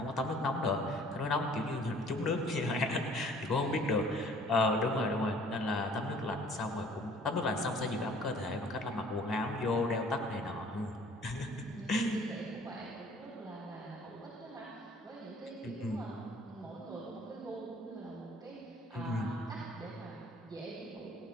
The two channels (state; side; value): normal; both; correlation 0.54